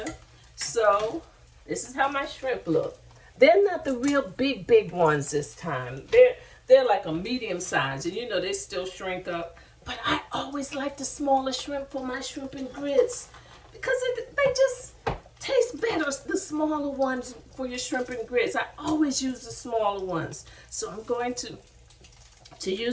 So this is how my shrimp look. They're not the real big ones this time. They're like a medium size, and they still shrink up. But I always like the smaller shrimp for my shrimp and grits, because they just taste better, the smaller ones for your shrimp and grits. I always use the smaller ones. So I'm going to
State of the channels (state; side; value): identical; both; correlation 1.00